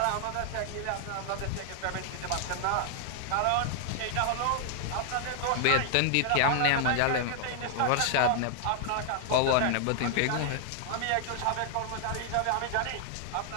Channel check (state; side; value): different; both; correlation 0.00